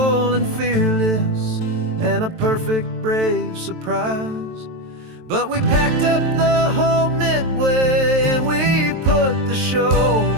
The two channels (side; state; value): left; late; 23 ms